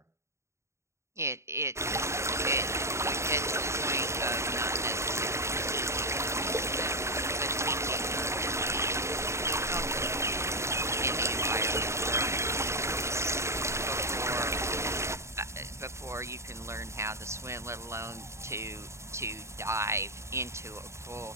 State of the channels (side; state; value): left; late; 0.14 ms